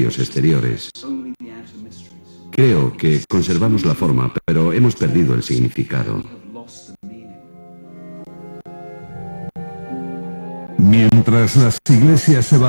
exteriores. Creo que conservamos la forma, pero hemos perdido el significado. Mientras las iglesias se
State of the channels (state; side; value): inverted; both; correlation -1.00